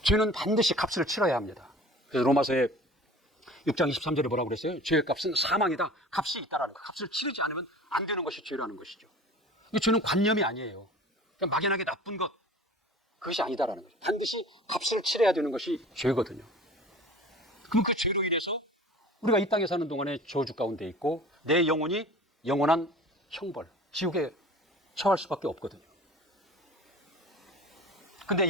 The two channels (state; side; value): normal; both; correlation 0.42